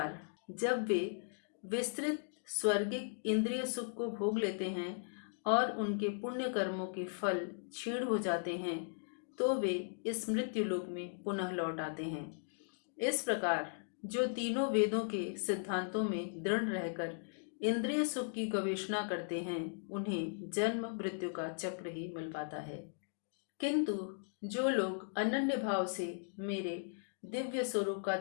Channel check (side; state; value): right; silent; digital silence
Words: जब वे विस्तृत स्वर्गिक इंद्रिय सुख को भोग लेते हैं और उनके पुण्य कर्मों के फल क्षीण हो जाते हैं, तो वे इस मृत्यु लोक में पुनः लौट आते हैं। इस प्रकार जो तीनों वेदों के सिद्धांतों में दृढ़ रहकर इंद्रिय सुख की गवेषणा करते हैं, उन्हें जन्म मृत्यु का चक्र ही मिल पाता है। किंतु जो लोग अनन्य भाव से मेरे दिव्य स्वरूप का